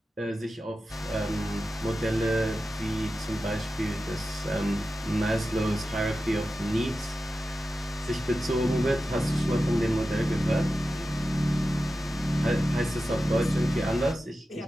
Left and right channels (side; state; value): both; normal; correlation 0.92